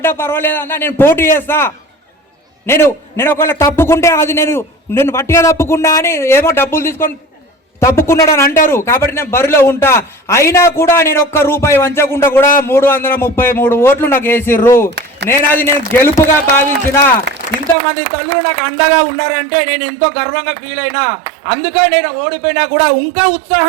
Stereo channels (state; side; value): drops out; left; at 17.8 s